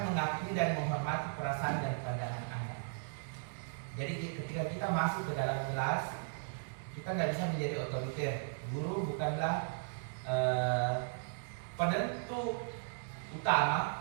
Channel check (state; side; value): silent; left; digital silence